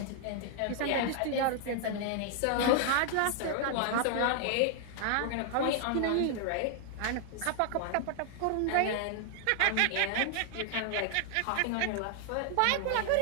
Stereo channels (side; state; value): both; different; correlation 0.00